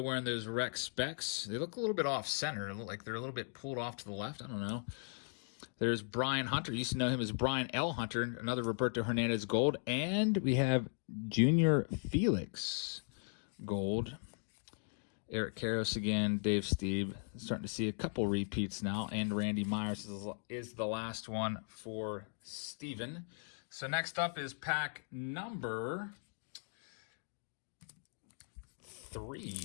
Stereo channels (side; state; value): right; silent; 52 dB below the other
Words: wearing those rec specs. They look a little bit off-center. They look like they're a little bit pulled off to the left. I don't know. There's Brian Hunter. You used to know him as Brian L. Hunter, another Roberto Hernandez gold. And we have Junior Felix gold. Eric Karras again, Dave Stieb. Starting to see a couple repeats now. And Randy Myers is the last one for Steven. So next up is pack number 3. You